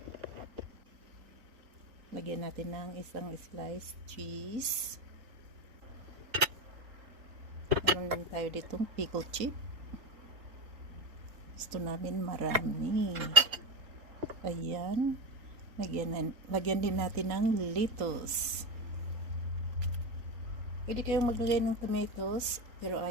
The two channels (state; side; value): late; left; 3.9 ms